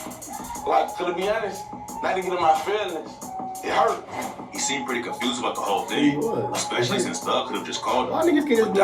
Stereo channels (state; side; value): identical; both; correlation 1.00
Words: Like, to be honest, not to get in my feelings, it hurt. He seemed pretty confused about the whole thing, especially since Thug could have just called Why him. niggas can't But